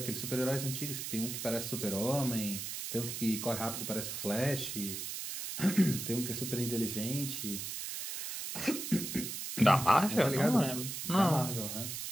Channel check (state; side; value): noise; right; hiss, 5 dB below the sound